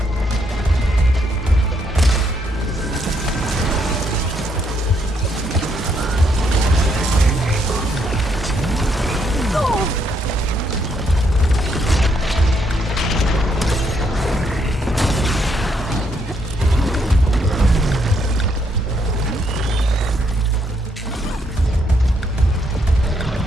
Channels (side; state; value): both; normal; correlation 0.74